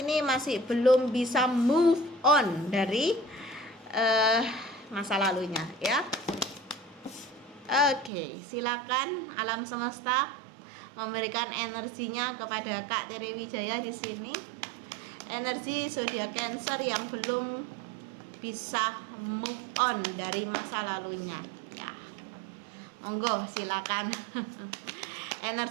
masih belum bisa move on dari masa lalunya ya. Oke, silakan alam semesta memberikan energinya kepada Kak Tere Wijaya di sini. Energi zodiak Cancer yang belum bisa move on dari masa lalunya ya. Monggo silakan.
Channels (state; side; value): drops out; left; at 8.1 s